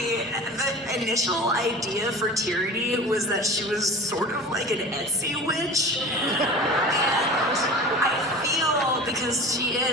the initial idea for Tyranny was that she was sort of like an Etsy witch. And I feel, because she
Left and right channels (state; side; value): normal; both; correlation 0.35